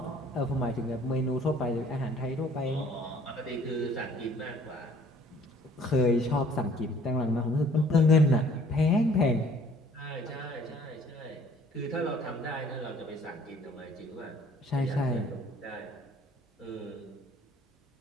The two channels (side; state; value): both; normal; correlation 0.56